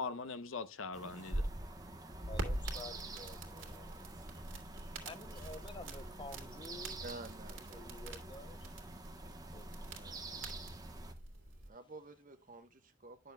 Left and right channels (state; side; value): normal; both; correlation 0.54